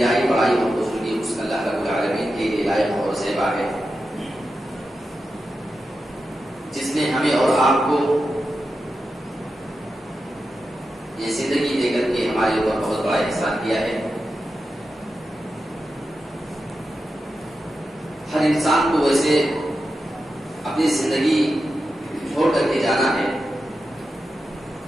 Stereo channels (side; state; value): both; normal; correlation 0.90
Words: بڑائی اور بزرگی اس اللہ رب العالمین کے لیے لائق اور زیبا ہے، جس نے ہمیں اور آپ کو یہ زندگی دے کر کے ہمارے اوپر بہت بڑا احسان کیا ہے۔ ہر انسان کو ویسے اپنی زندگی چھوڑ کر کے جانا ہے،